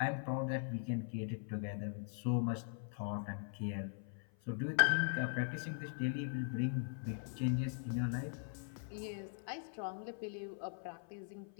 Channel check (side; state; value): right; silent; 50 dB below the other